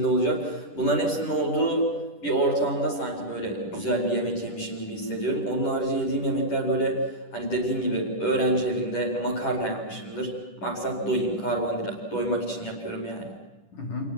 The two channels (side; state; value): right; late; 10 ms